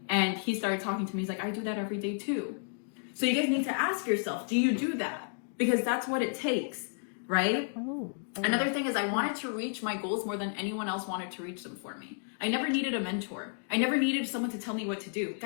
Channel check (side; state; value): right; silent; digital silence